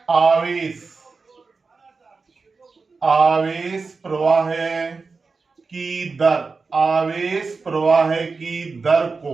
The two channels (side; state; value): left; quieter; 4.4 dB